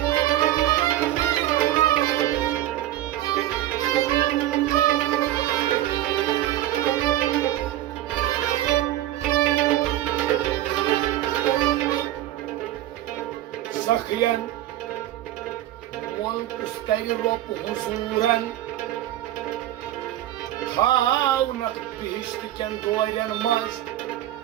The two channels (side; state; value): left; quieter; 13.8 dB